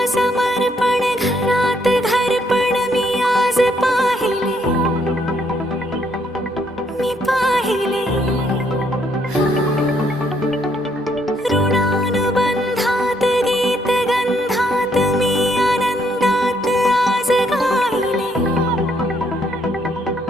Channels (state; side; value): normal; both; correlation 0.71